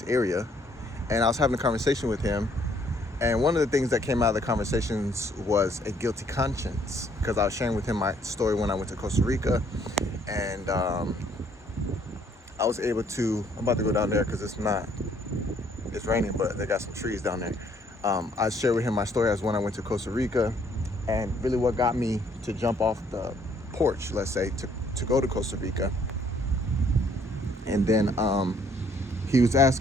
area, and I was having a conversation with him. And one of the things that came out of the conversations was a guilty conscience, because I was sharing with him my story when I went to Costa Rica, and I was able to, I'm about to go down there because it's raining, but they got some trees down there. I shared with him my story as when I went to Costa Rica, and really what got me to jump off the porch, let's say, to go to Costa Rica. And then he was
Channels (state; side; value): normal; both; correlation 0.65